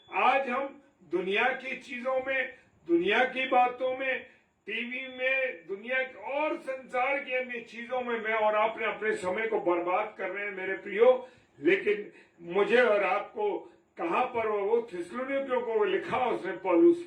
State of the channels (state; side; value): identical; both; correlation 1.00